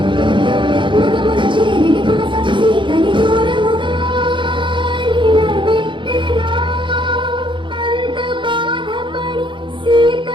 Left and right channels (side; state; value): left; late; 0.23 ms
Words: ముగమున చేరిడి పునస సీతని దూరముగా నిలబెట్టెరా